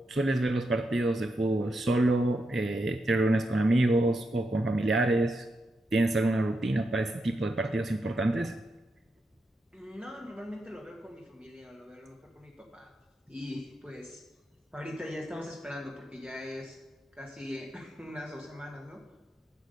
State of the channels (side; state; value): both; normal; correlation 0.84